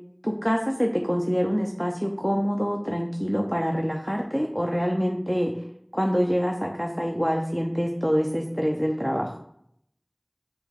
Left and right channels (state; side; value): identical; both; correlation 1.00